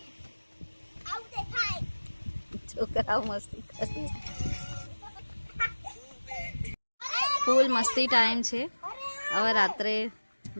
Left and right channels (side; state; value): both; inverted; correlation -1.00